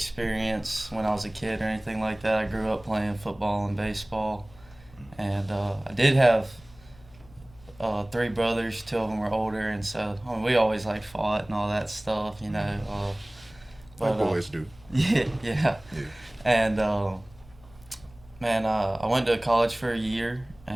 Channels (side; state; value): left; noise; hum, 24 dB below the sound